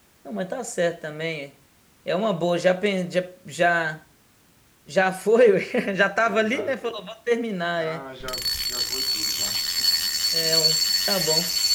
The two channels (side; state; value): both; identical; correlation 1.00